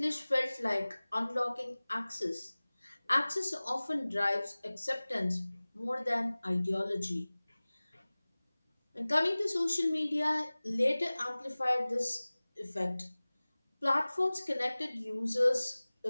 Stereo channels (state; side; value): inverted; both; correlation -0.99